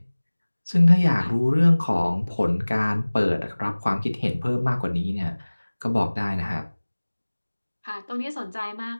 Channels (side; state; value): both; inverted; correlation -1.00